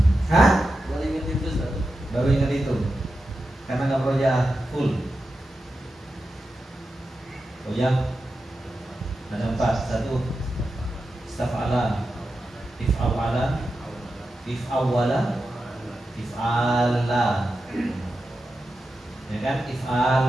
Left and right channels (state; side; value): normal; both; correlation 0.90